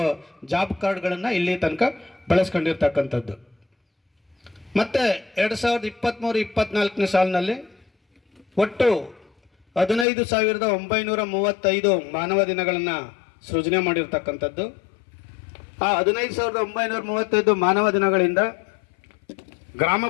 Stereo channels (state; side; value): drops out; right; at 10.1 s